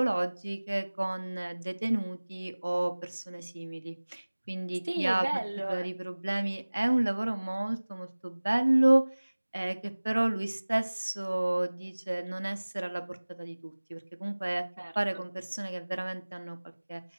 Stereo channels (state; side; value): inverted; both; correlation -1.00